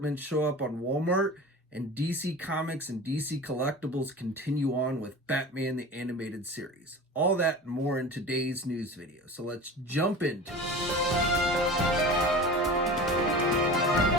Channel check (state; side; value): normal; both; correlation 0.35